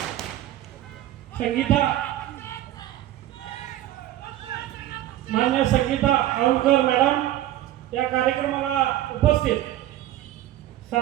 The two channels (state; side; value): quieter; left; 13.9 dB